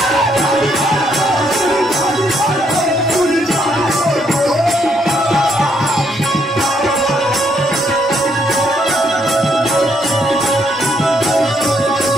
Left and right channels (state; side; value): normal; both; correlation 0.73